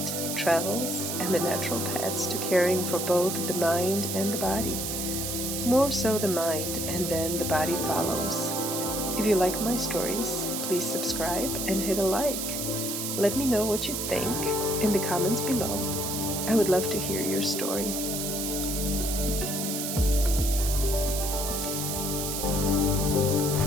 travels, and the natural paths to caring for both the mind and the body. More so the mind, and then the body follows. If you like my stories, please subscribe and hit a like. Let me know what you think in the comments below. I would love to hear your story.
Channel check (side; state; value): right; noise; hiss, 3 dB below the sound